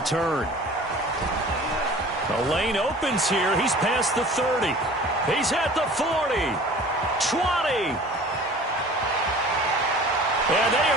The lane opens here. He's past the 30. He's at the 40, 20. And they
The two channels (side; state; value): both; normal; correlation 0.44